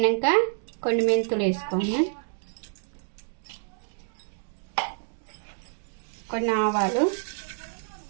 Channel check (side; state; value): left; silent; digital silence